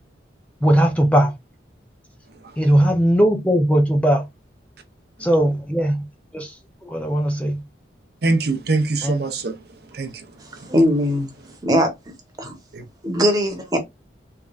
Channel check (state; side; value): normal; both; correlation 0.83